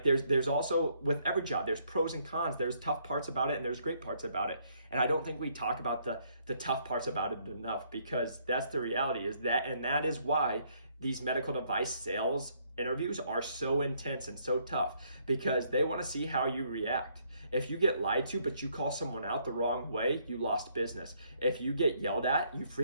there's also, with every job, there's pros and cons. There's tough parts about it and there's great parts about it. And I don't think we talk about the tough parts about it enough, because that's the reality, is that, and that is why these medical device sales interviews are so intense and so tough, because they want to see how you react. If you get lied to, but you call someone out the wrong way, you lost business. If you get yelled at, you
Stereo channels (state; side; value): inverted; both; correlation -0.69